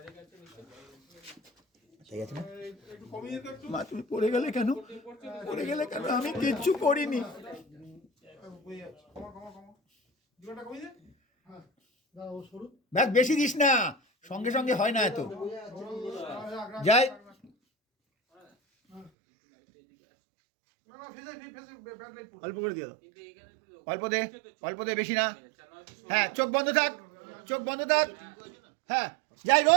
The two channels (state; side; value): drops out; left; at 19.1 s